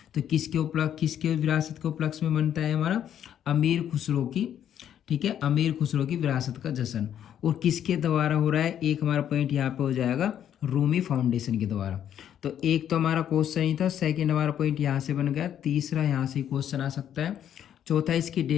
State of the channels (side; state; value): right; quieter; 9.9 dB